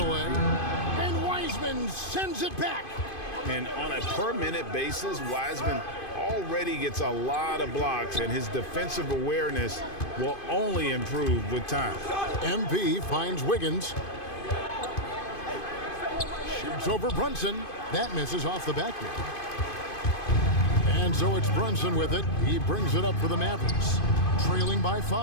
And Wiseman sends it back. And on a per-minute basis, Wiseman already gets a lot of blocks, and his defensive awareness will only improve with time. MP finds Wiggins. Shoots over Brunson. That misses off the backboard. And so it's Brunson with it. He brings it up for the Mavericks, trailing by 5.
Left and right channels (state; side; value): late; right; 2.5 ms